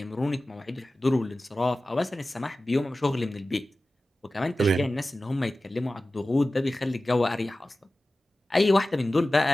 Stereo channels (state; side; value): normal; both; correlation 0.96